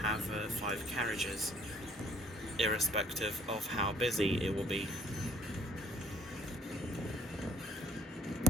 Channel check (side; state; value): both; normal; correlation 0.58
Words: 5 carriages, irrespective of how busy it will be.